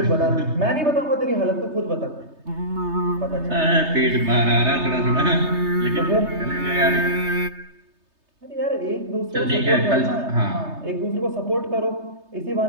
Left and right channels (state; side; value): late; left; 3.3 ms